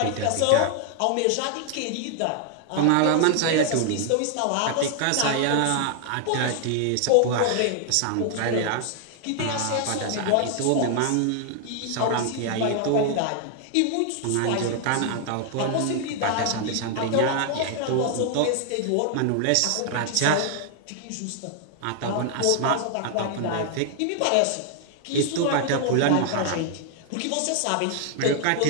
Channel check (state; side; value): different; both; correlation 0.00